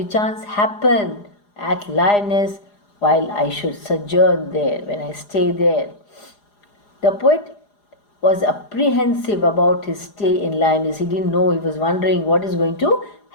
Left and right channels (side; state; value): right; late; 4.9 ms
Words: chance happen at lyonnesse while I should sojourn there, when I stay there. The poet was apprehensive about his stay in lyonnesse. He didn't know. He was wondering what is going to